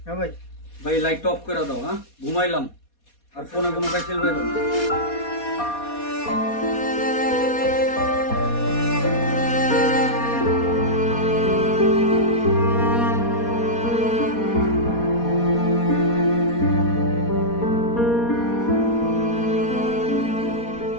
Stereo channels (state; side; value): late; right; 4.2 ms